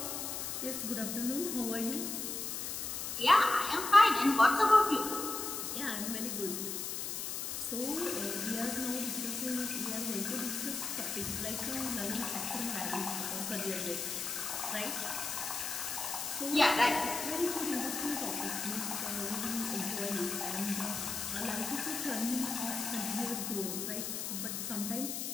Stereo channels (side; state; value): left; noise; hiss, 4 dB below the sound